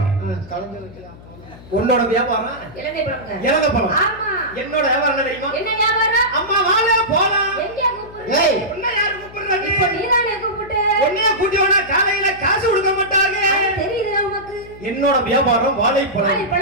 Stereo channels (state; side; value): noise; left; hum, 19 dB below the sound